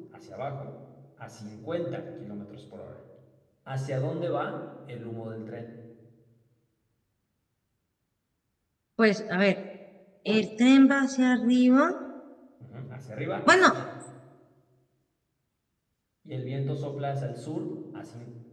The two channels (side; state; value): both; identical; correlation 1.00